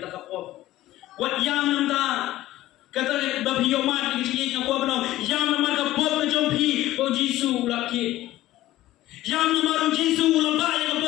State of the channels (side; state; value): right; quieter; 15.5 dB